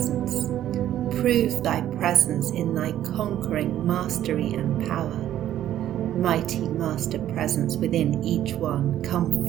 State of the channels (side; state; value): left; quieter; 11.9 dB